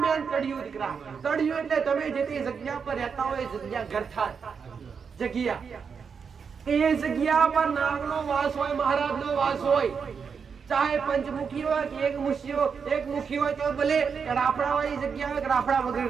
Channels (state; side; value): quieter; left; 6.1 dB